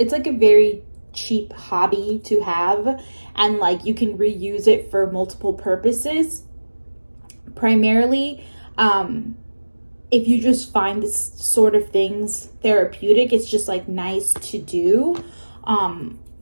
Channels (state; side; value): inverted; both; correlation -1.00